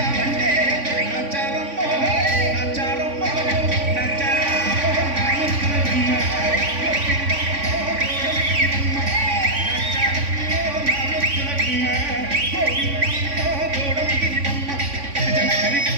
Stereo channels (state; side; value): late; left; 3.5 ms